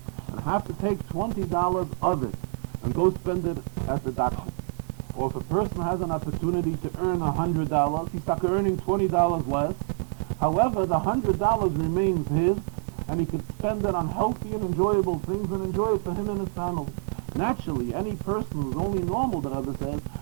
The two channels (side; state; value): left; silent; digital silence